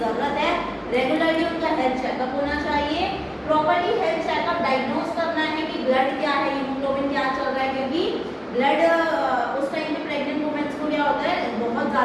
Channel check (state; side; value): identical; both; correlation 1.00